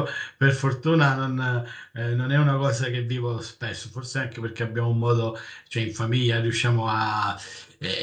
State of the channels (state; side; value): identical; both; correlation 1.00